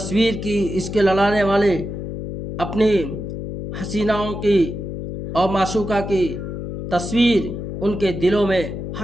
کی، عشق لڑانے والے اپنی حسیناؤں کی اور معشوقہ کی تصویر ان کے دلوں میں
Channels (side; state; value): left; noise; hum, 7 dB below the sound